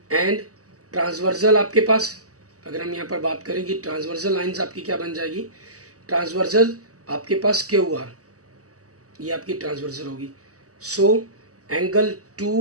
एंड ट्रांसवर्सल आपके पास, अगर हम यहाँ पर बात करें कि ट्रांसवर्सल लाइंस आपकी क्या बन जाएगी, ट्रांसवर्सल आपके पास क्यू आर, ये आपकी ट्रांसवर्सल होगी। So angle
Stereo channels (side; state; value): left; late; 0.66 ms